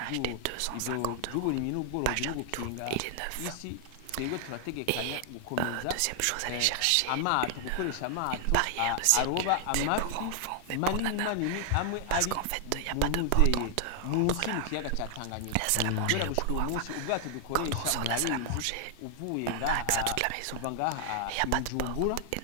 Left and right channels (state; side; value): different; both; correlation 0.00